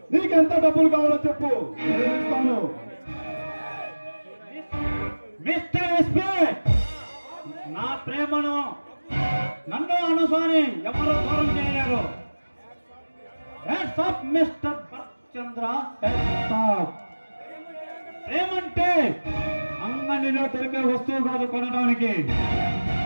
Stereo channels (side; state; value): both; inverted; correlation -1.00